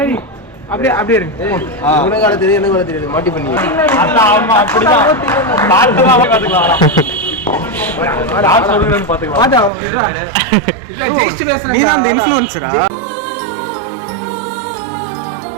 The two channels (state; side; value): drops out; left; at 9.7 s